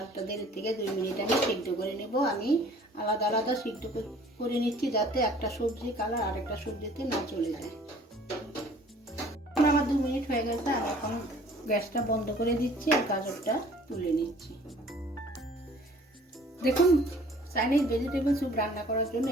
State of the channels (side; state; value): both; normal; correlation 0.53